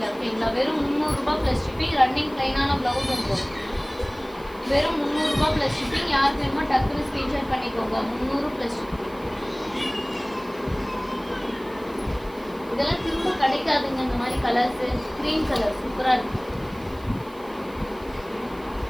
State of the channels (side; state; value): right; noise; hiss, 25 dB below the sound